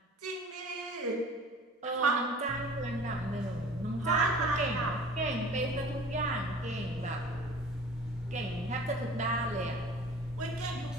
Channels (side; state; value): both; normal; correlation 0.43